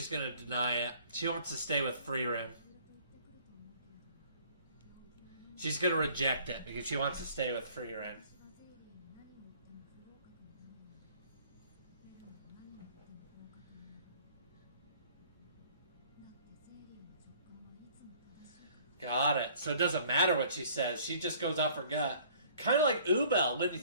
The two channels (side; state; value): both; inverted; correlation -0.55